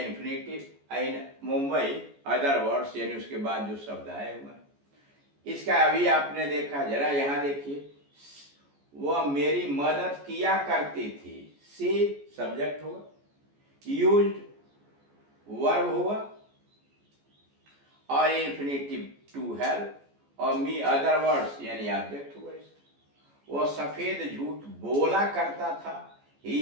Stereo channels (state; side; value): late; left; 14 ms